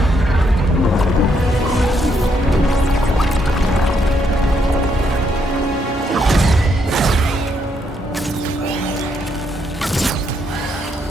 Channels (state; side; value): normal; both; correlation 0.75